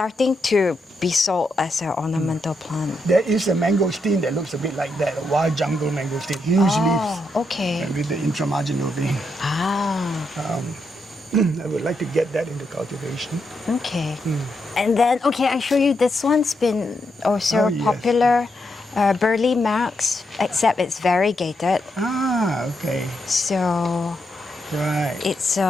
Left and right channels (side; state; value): both; normal; correlation 0.81